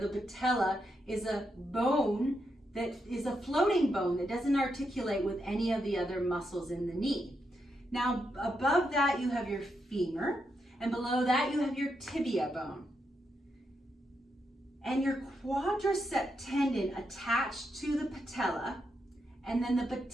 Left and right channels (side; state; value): both; normal; correlation 0.82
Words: patella is a bone that is a floating bone that doesn't articulate with any of the other muscles in the knee. Now, above that you have your femur, and below that you have your tibia bone. And your quadricep tendon attached to the patella, and then the